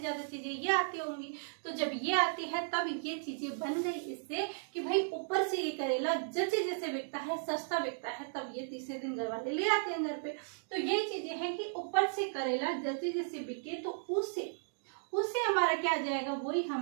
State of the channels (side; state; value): left; silent; digital silence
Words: ज्यादा चीजें ये आती होंगी। तो जब ये आती है तब ये चीजें बन गई इससे कि भाई ऊपर से ये करेला जैसे जैसे बिकता है, सस्ता बिकता है, तब ये तीसरे दिन घर वाले ले आते हैं घर पे। तो यही चीजें हैं कि ऊपर से करेला जैसे जैसे बिके, तो उससे हमारा क्या आ जाएगा, वही